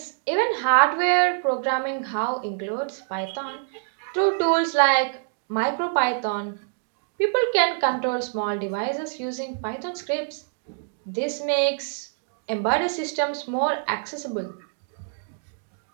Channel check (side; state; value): left; silent; digital silence